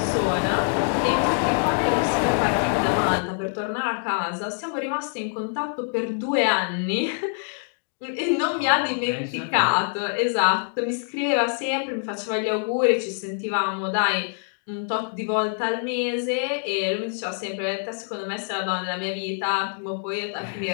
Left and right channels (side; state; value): right; silent; 62 dB below the other